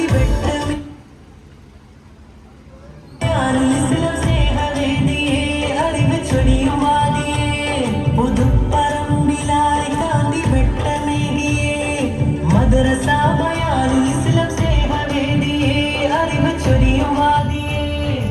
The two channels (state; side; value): identical; both; correlation 1.00